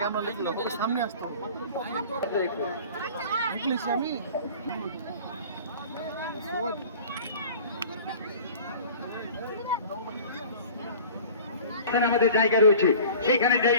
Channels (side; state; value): both; inverted; correlation -0.43